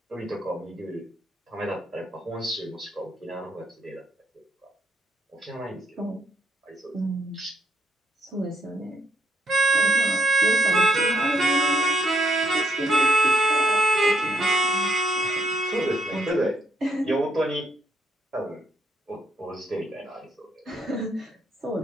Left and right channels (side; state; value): both; normal; correlation 0.73